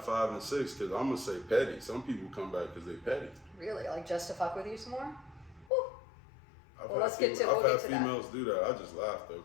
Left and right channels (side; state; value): right; drops out; at 5.7 s